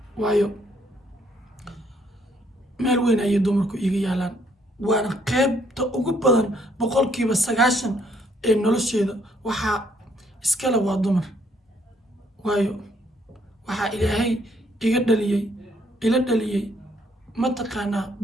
waayo meel weyn ayay dumarku iga yaalaan waana qaybta ugu badan 90% ee nolosheeda waxaa iskale waa dumar waayo waxaa ilaahay ila dhaliyay mataqaanaa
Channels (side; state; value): both; normal; correlation 0.68